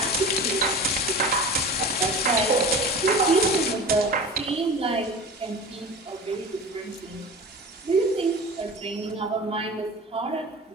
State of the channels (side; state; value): both; normal; correlation 0.34